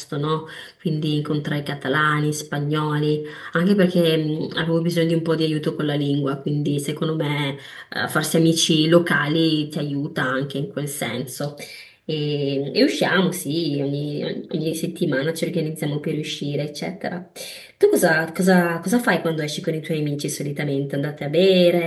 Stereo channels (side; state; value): both; identical; correlation 1.00